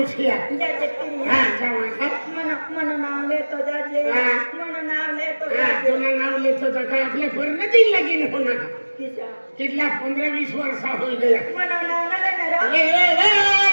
जाते पिढी हा जावा मन नाव लेतो जाजे हा. मन नाव लेतो हा जाजे तुला नाव लेतो तर काय आपल्या परिणती लगीन होणार किसा कितला 15-20 वर्षा होई गया मन नाव न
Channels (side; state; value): both; inverted; correlation -1.00